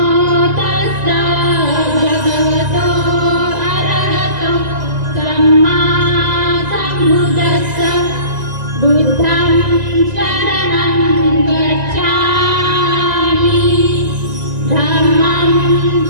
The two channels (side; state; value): left; late; 1.9 ms